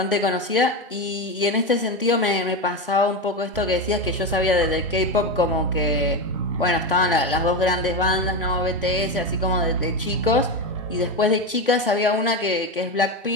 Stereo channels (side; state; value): both; normal; correlation 0.16